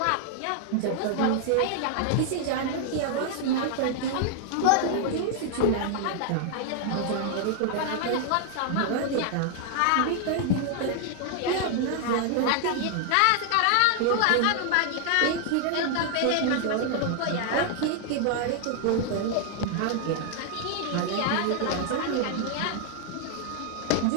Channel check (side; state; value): both; different; correlation 0.00